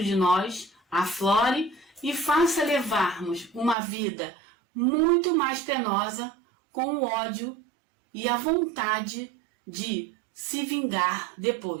de nós aflore e faça levarmos uma vida muito mais penosa com o ódio e a vontade de se vingar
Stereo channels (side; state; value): left; drops out; at 3.8 s